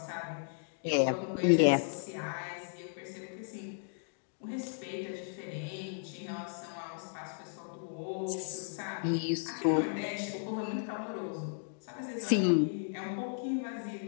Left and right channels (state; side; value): silent; right; digital silence